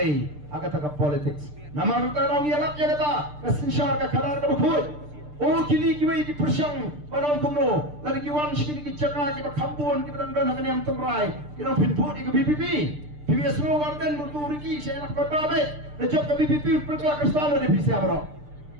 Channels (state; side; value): late; left; 6.7 ms